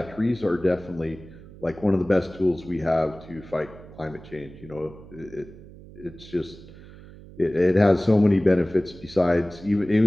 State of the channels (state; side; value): noise; right; hum, 19 dB below the sound